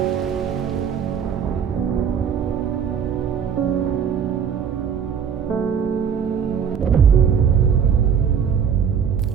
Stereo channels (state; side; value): quieter; left; 7.5 dB